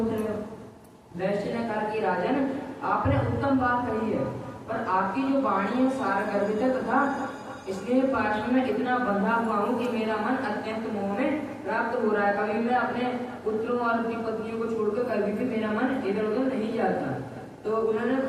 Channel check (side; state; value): both; identical; correlation 1.00